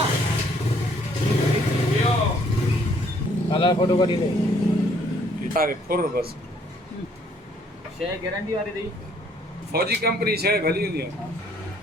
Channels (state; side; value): normal; both; correlation 0.64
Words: કાલા ફોટો કાઢી લે તારે ફોર બસ છે ગેરંટી વાળી દઈ ફौजी कंपनी છે ભલી ની